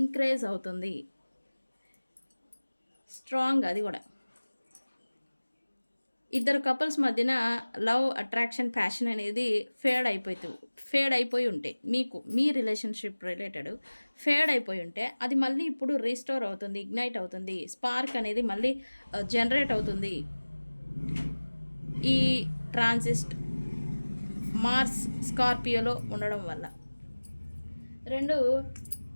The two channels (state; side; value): inverted; both; correlation -1.00